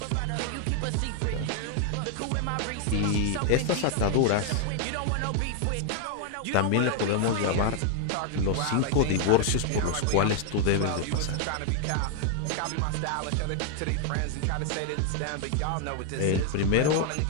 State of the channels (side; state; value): both; different; correlation 0.00